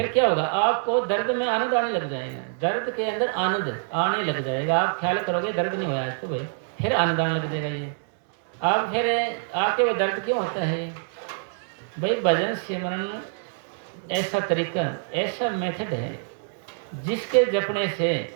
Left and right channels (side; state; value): left; silent; digital silence